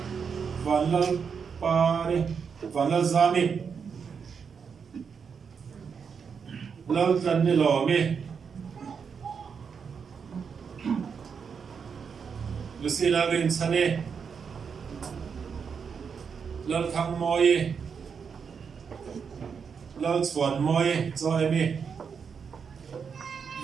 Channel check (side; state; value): left; quieter; 6.3 dB